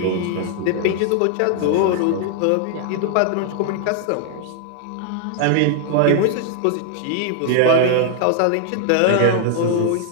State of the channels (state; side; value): different; both; correlation -0.01